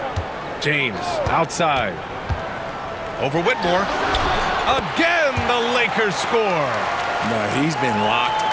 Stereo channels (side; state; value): both; identical; correlation 1.00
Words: James outside. Over Whitmore. Again, the Lakers score. No, he's been locked